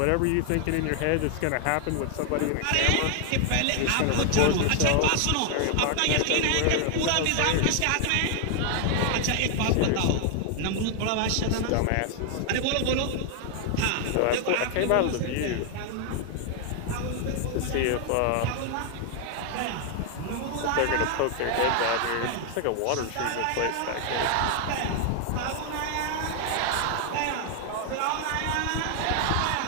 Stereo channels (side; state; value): both; different; correlation 0.00